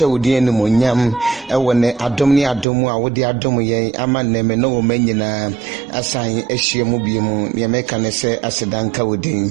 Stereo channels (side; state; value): left; drops out; at 2.7 s